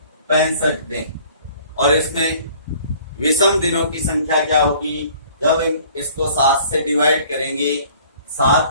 दिन। और इसमें विषम दिनों की संख्या क्या होगी? जब हम इसको 7 से डिवाइड करेंगे,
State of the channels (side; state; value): both; inverted; correlation -0.53